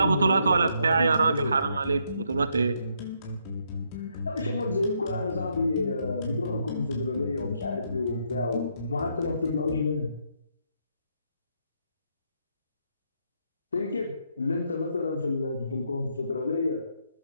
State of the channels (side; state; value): both; inverted; correlation -0.75